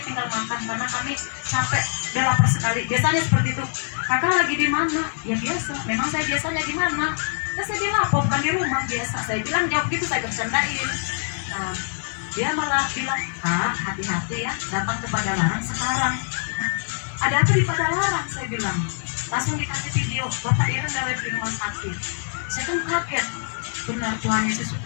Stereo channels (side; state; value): right; silent; digital silence